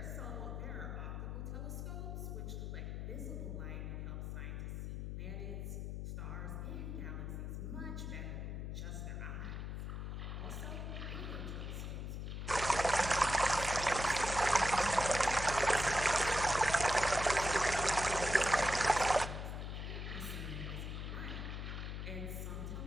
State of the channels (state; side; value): noise; left; hum, 5 dB below the sound